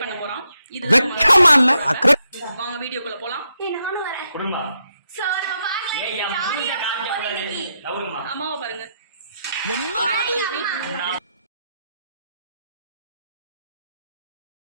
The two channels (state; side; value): inverted; both; correlation -0.81